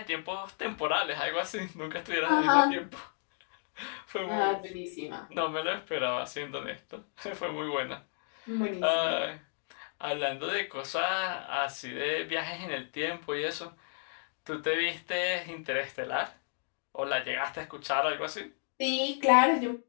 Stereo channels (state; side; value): silent; right; 56 dB below the other